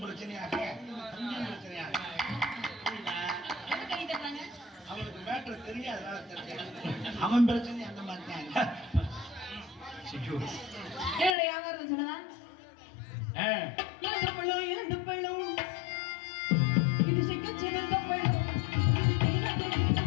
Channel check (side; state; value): right; drops out; at 11.4 s